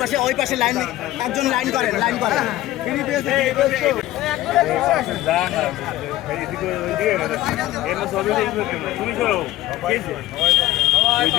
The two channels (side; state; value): right; quieter; 15.5 dB